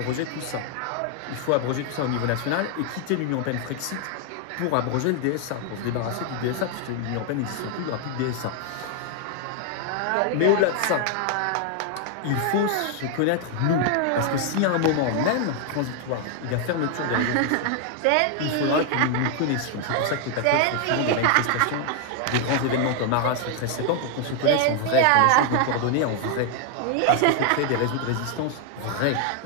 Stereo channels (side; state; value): both; different; correlation 0.00